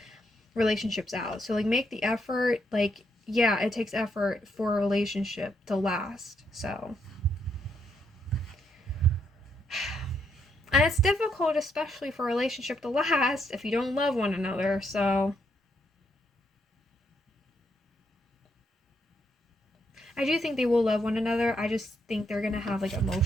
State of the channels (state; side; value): normal; both; correlation 0.76